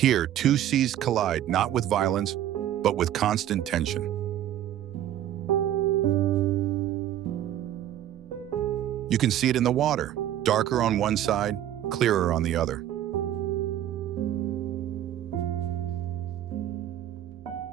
Here, two seas collide not with violence, but with constant tension. You can see it in the water, darker on one side, clearer on the other.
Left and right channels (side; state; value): left; quieter; 11.8 dB